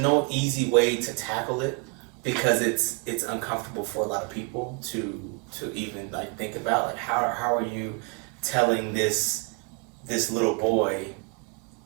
easy way to tackle it because it's uncomfortable for a lot of people to even like think about like how are you telling this little boy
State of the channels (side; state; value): left; quieter; 33.5 dB